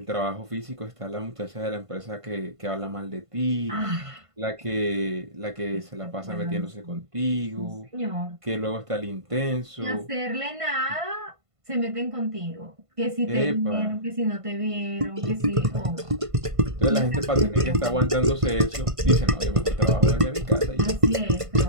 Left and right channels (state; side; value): late; left; 1.5 ms